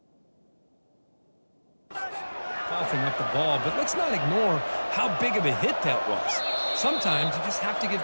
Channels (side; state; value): both; inverted; correlation -1.00